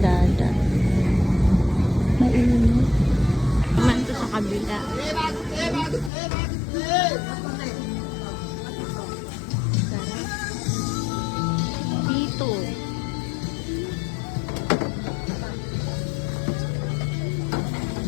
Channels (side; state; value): right; drops out; at 6.1 s